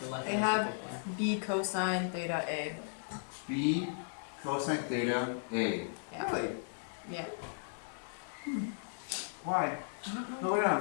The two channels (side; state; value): right; silent; digital silence